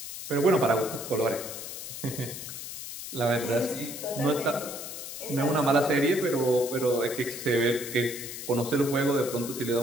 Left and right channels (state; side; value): noise; left; hiss, 9 dB below the sound